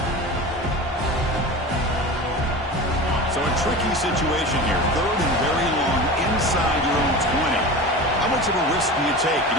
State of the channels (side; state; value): both; normal; correlation 0.31